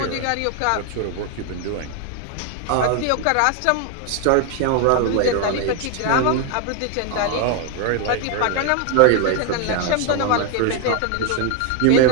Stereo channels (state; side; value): different; both; correlation 0.01